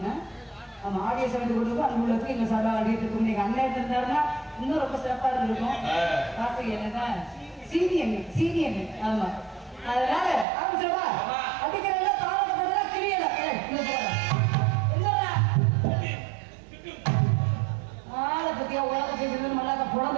ஆமா ஆடிய சமைத்து கொண்டு அன்புள்ளதுக்கு எங்க சார்பாக ஆடிட்டு நீங்க அண்ணன் இருந்தாருன்னா இன்னும் ரொம்ப சிறப்பா இருந்திருக்கும். வாசி என்னதான் சீனியன் ஆமா. அதனால ஆரம்பிச்சிருவா அடிக்கிறதுல தாளத்தை கிரியல ஆளை பத்தியா உலக செய்து மல்லாக்க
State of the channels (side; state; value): left; drops out; at 10.5 s